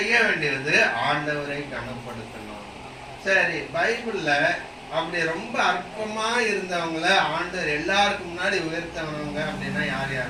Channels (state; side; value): identical; both; correlation 1.00